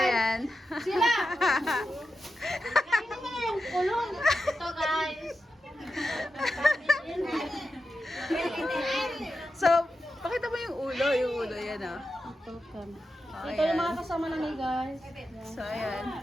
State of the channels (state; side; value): normal; both; correlation 0.90